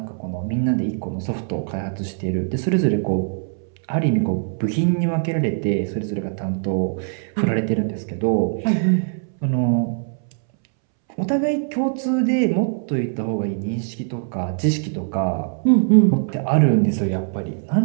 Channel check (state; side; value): silent; left; 64 dB below the other